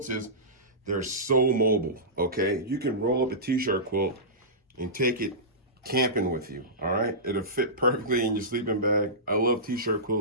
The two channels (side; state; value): both; normal; correlation -0.18